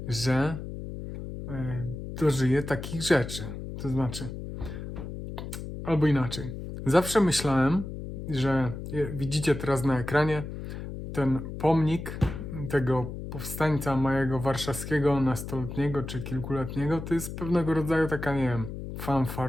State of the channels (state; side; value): noise; left; hum, 8 dB below the sound